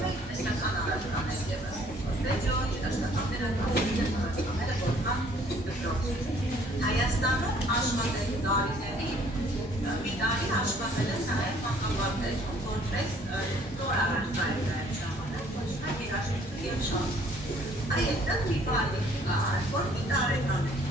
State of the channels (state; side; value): normal; both; correlation 0.59